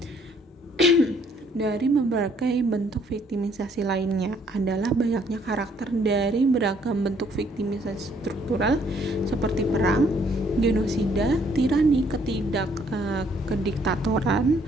berbagai bentuk viktimisasi lainnya adalah banyaknya karakter dari beragam bentuk viktimisasi struktural seperti perang, genosida, tirani, kediktatoran,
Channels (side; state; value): both; normal; correlation 0.65